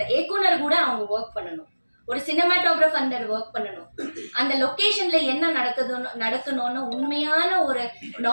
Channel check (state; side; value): inverted; both; correlation -1.00